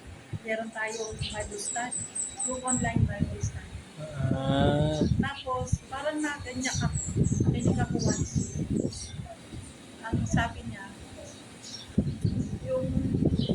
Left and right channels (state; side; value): identical; both; correlation 1.00